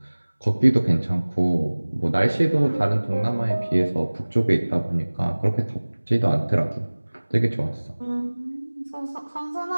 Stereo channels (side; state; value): both; inverted; correlation -1.00